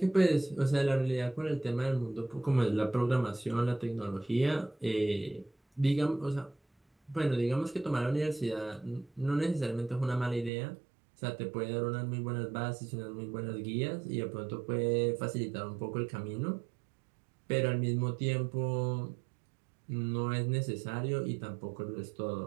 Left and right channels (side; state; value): left; drops out; at 10.5 s